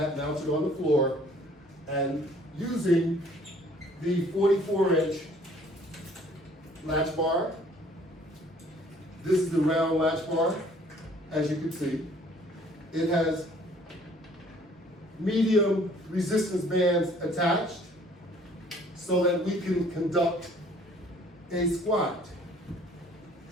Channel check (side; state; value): both; normal; correlation 0.57